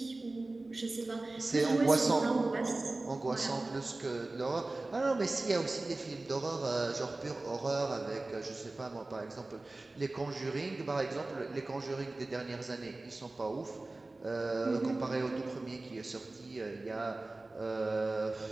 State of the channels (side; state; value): left; quieter; 3.0 dB